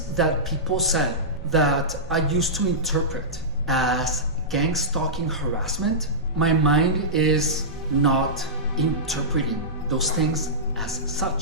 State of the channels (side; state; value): both; normal; correlation -0.16